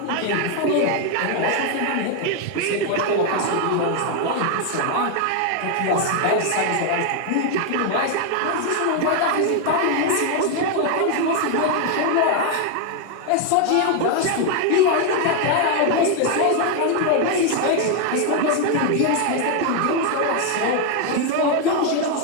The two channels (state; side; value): different; both; correlation 0.01